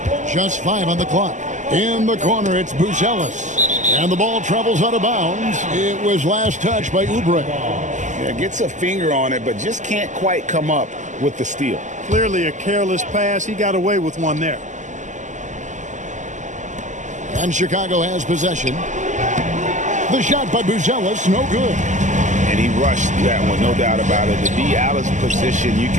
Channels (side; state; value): left; late; 0.35 ms